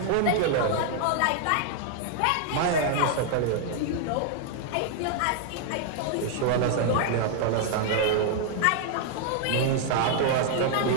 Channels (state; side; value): different; both; correlation 0.00